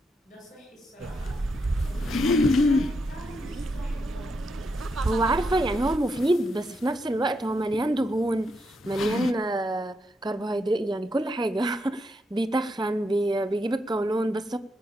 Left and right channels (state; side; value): normal; both; correlation 0.81